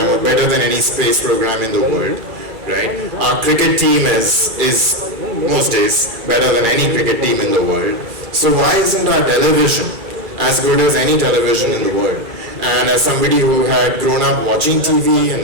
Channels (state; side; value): late; left; 2.3 ms